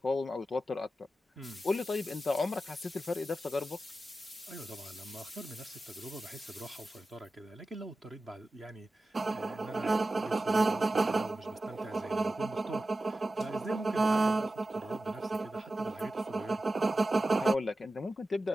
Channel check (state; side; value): normal; both; correlation 0.94